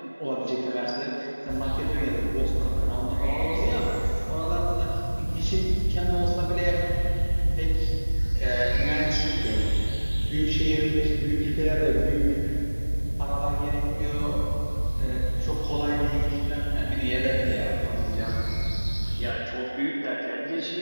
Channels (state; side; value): inverted; both; correlation -1.00